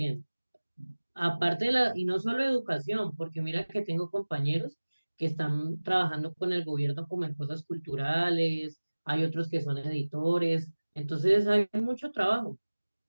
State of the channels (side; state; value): both; inverted; correlation -1.00